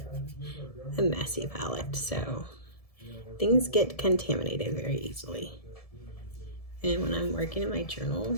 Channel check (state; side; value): late; right; 1.7 ms